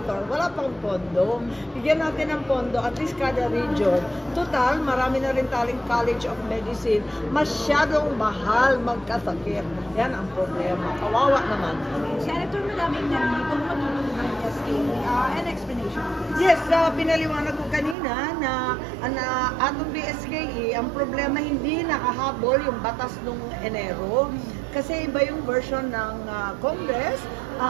Wala pang pondo. Bigyan natin ng pondo, at least kada region. Total, marami na rin taling College of Medicine. Masyadong mahal magkasakit. Yan ang problema. Kawawa naman. Senator, maraming nandito matulog ng SK. An explanation. Yes, pinaliwanag ko kanina na atong BSKE, ang problema hindi nakahabol yung batas nung Enero. Kasi iba yung version ng Congress.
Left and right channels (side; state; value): left; drops out; at 17.9 s